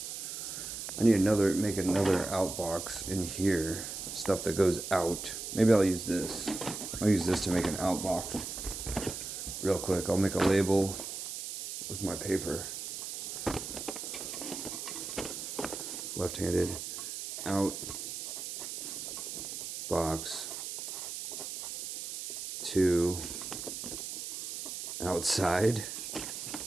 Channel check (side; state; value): right; noise; hiss, 6 dB below the sound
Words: I need make another outbox in here. Stuff that goes out. Maybe I'll use this. I'll use this to make an outbox. Real quick, I'll make a label. Where's my paper? Left-handed. Out. Box. To. Outside.